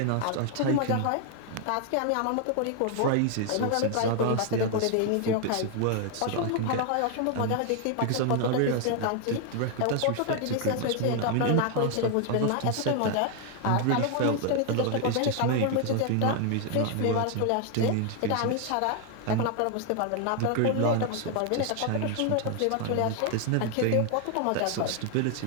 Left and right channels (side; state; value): both; different; correlation 0.00